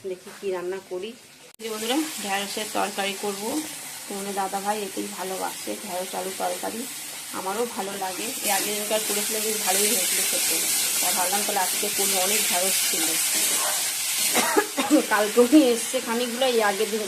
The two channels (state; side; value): identical; both; correlation 1.00